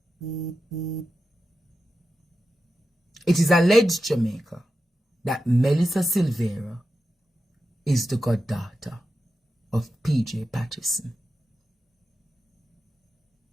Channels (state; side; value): normal; both; correlation 0.91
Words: It is alleged, Jamaica, that Melissa Silvera is the goddaughter of PJ Patterson.